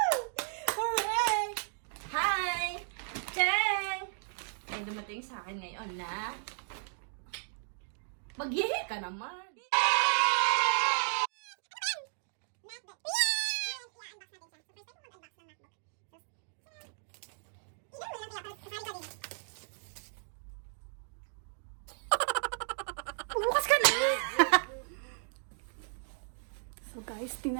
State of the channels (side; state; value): left; silent; digital silence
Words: Hooray! Hi! Cheng! May dumating sa akin ngayon na maghihi ka naman. Bukas ka na! So guys,